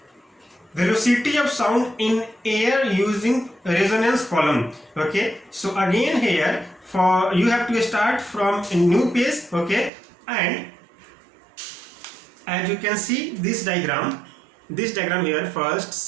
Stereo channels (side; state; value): left; drops out; at 9.9 s